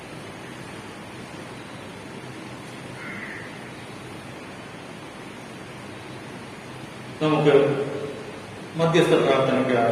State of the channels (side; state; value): both; identical; correlation 1.00